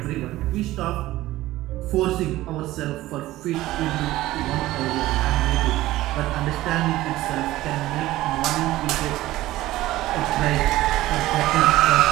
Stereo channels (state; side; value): quieter; left; 16.4 dB